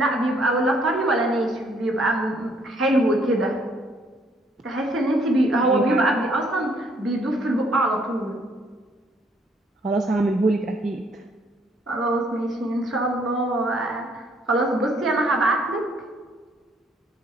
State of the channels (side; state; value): both; normal; correlation 0.66